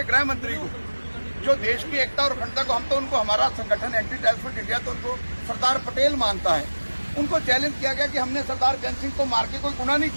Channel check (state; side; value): inverted; both; correlation -1.00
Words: गृह मंत्री को, जो देश की एकता और अखंडता को, हम तो उनको, हमारा संगठन एंटी टेररिस्ट फ्रंट इंडिया तो उनको सरदार पटेल मानता है, उनको चैलेंज किया गया कि हमने सरदार बेअंत सिंह को मार के कोई गुनाह नहीं